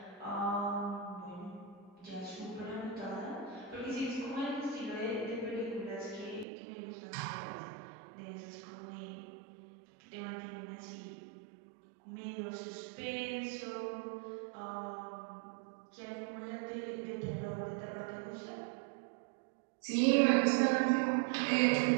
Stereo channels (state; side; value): drops out; left; at 6.5 s